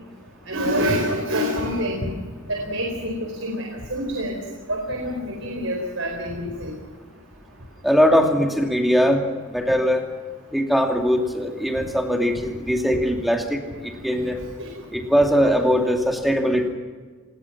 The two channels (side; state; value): both; normal; correlation 0.66